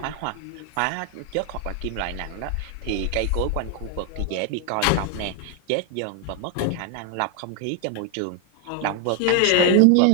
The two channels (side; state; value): both; different; correlation 0.00